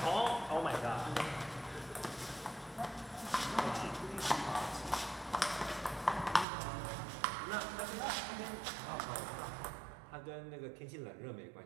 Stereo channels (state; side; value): drops out; left; at 6.5 s